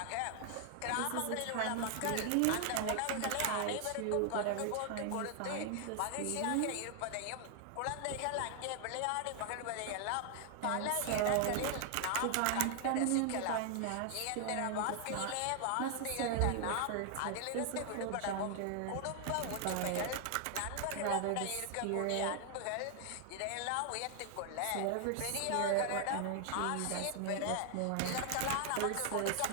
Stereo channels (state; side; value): different; both; correlation 0.00